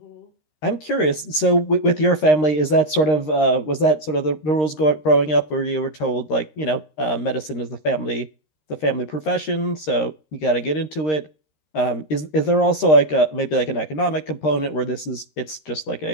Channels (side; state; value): right; late; 13 ms